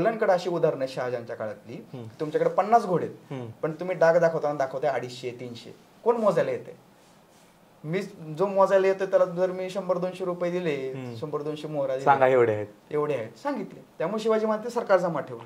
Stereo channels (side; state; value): both; identical; correlation 1.00